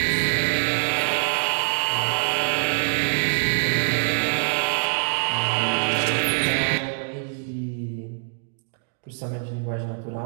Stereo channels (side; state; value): left; silent; digital silence